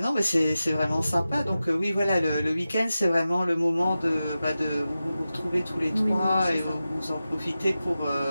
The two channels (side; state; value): both; inverted; correlation -0.93